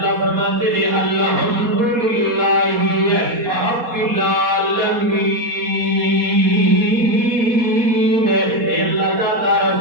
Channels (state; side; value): late; left; 4.2 ms